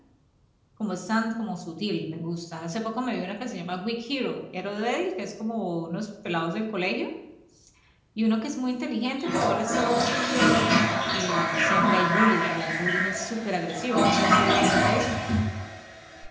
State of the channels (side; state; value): both; identical; correlation 1.00